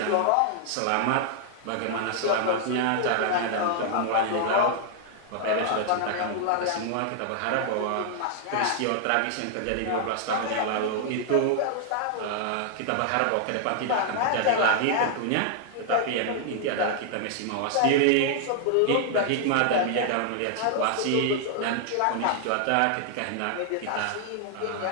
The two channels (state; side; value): different; both; correlation -0.01